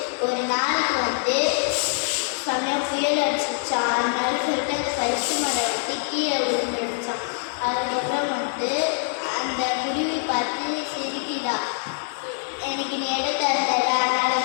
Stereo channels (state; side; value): silent; right; digital silence